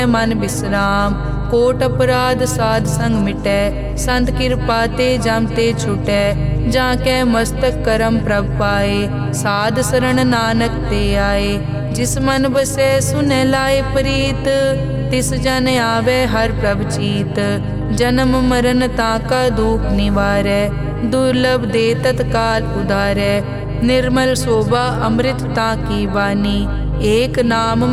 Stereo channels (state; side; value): identical; both; correlation 1.00